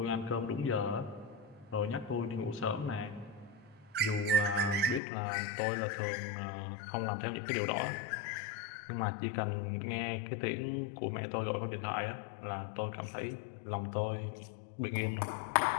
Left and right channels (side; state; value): right; drops out; at 5.0 s